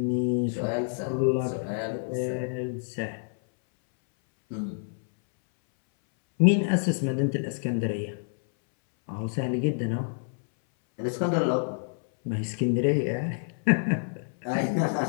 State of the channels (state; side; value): silent; right; 60 dB below the other